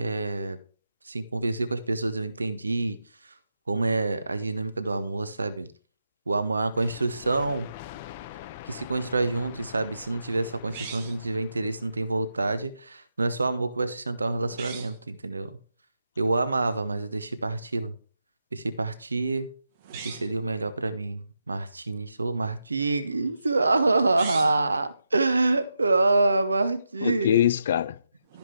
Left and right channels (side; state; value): both; inverted; correlation -0.85